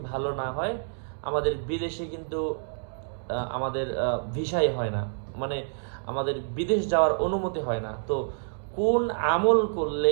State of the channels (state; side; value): silent; left; digital silence